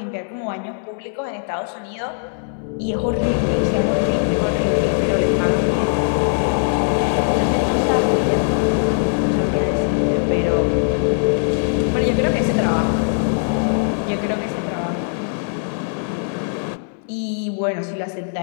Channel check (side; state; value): right; silent; digital silence